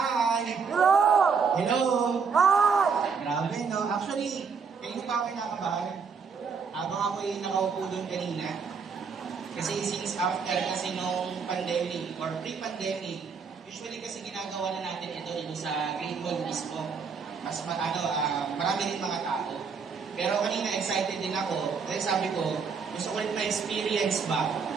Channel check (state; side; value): quieter; left; 5.6 dB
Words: Hello! Hello! Hi! Grabe, no? Actually, kayo pa ako kinakabahan. Habang ako'y nakaupo doon kanina. Kasi since after kasi nung pandemic or pre-pandemic, usually kasi ginagawa na natin ito sa Great Mall mismo. Mas marami din mga tao. Pero kanina excited din ako. Dahil sabi ko, gusto ko ulit ma-experience ba